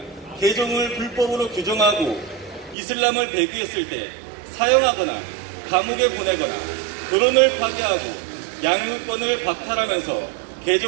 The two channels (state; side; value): drops out; left; at 2.8 s